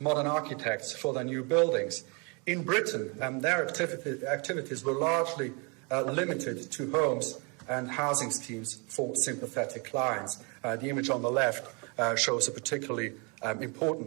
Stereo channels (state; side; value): quieter; left; 32.8 dB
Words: architects for their new buildings, in Britain their activities were largely limited to homes and housing schemes for sympathetic clients. The image on the left shows a particularly